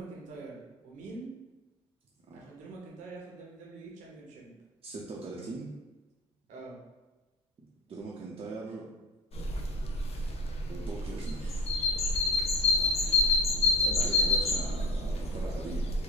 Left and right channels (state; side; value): normal; both; correlation 0.33